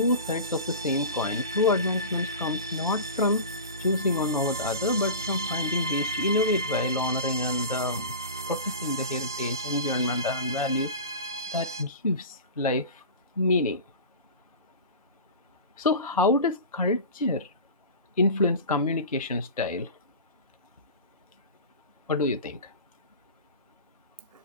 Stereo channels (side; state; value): both; inverted; correlation -0.32